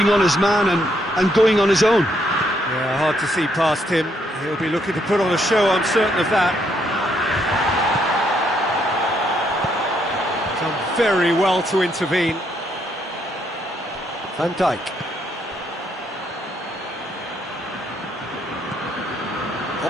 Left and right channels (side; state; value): both; normal; correlation 0.73